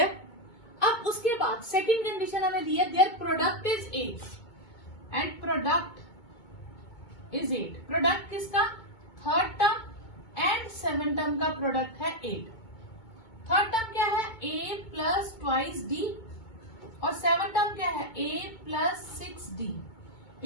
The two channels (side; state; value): right; late; 2.2 ms